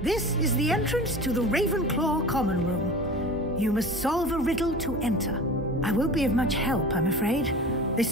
This is the entrance to the Ravenclaw common room. You must solve a riddle to enter. I won't be of much help, I'm afraid.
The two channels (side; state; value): both; normal; correlation 0.36